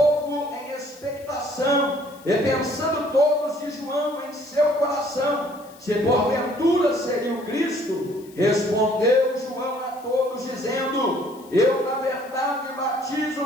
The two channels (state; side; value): noise; left; hiss, 25 dB below the sound